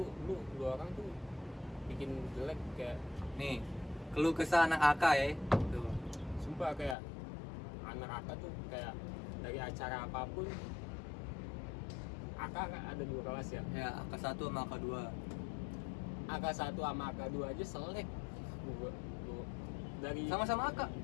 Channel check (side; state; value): right; drops out; at 7.0 s